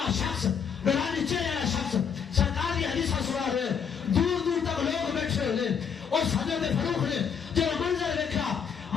شخص نورانی چہرے والا شخص سرکار کی حدیث سنا رہے دور دور تک لوگ بیٹھے ہوئے اس حضرت فاروق نے جب منظر دیکھا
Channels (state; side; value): quieter; right; 7.1 dB